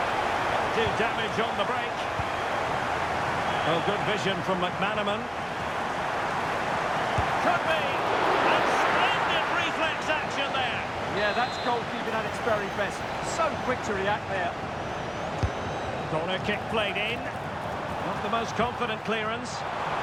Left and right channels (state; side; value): identical; both; correlation 1.00